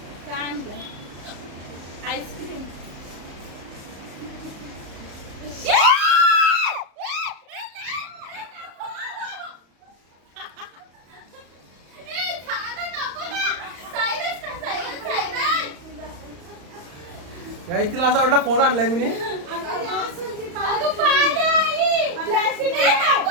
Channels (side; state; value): left; late; 35 ms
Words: काही तिला असं वाटलं फोन आणलाय मी